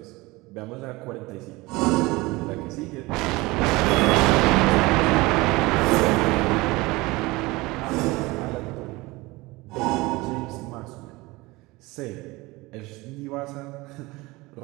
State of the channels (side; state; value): left; quieter; 22.0 dB